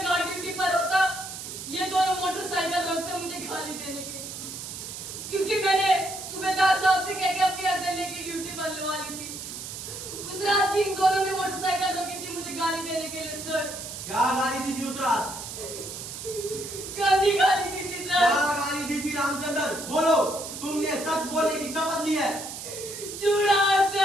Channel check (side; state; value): right; noise; hiss, 9 dB below the sound